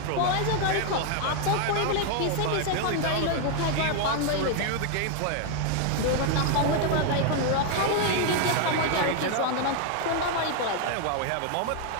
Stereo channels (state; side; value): different; both; correlation 0.00